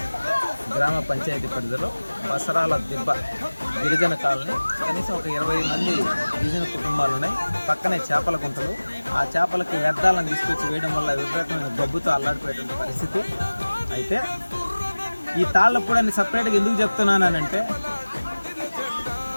గ్రామ పంచాయతీ పరిధిలో బసరాల దిబ్బ గిరిజన కాలనీ. కనీసం ఒక 20 మంది గిరిజన కుటుంబాలు ఉన్నాయి. పక్కనే చేపల గుంటలు. ఆ చేపలకి వ్యర్థాలను తీసుకొచ్చి వేయడం వల్ల విపరీతమైన గబ్బుతో అల్లాడిపోయేటువంటి పరిస్థితి. అయితే ఈ తాళ్లపూడి అని సపరేట్గా ఎందుకు చెప్తున్నానంటే,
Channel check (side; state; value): both; inverted; correlation -1.00